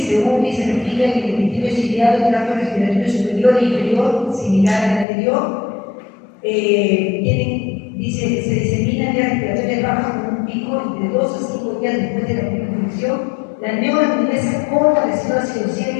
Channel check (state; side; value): drops out; right; at 5.1 s